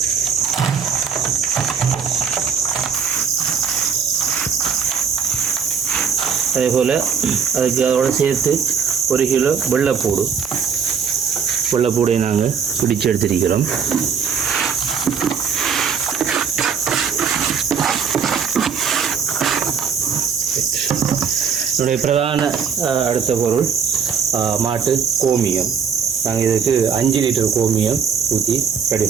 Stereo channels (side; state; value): left; quieter; 6.6 dB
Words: அதேபோல் அதோடு சேர்த்து 1 கிலோ வெள்ளைப்பூடை நாங்கள் பிடிச்சு எடுத்திருக்கிறோம். என்னுடைய பிரதான அடுத்த பொருள் மாட்டு கோமியம். நாங்கள் இதுக்கு 5 லிட்டர் கோமியம் ஊற்றி ரெடி